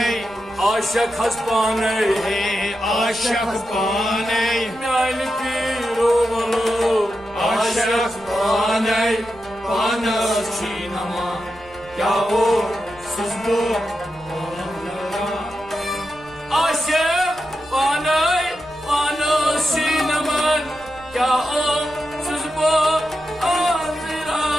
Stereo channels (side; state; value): right; noise; rumble, 23 dB below the sound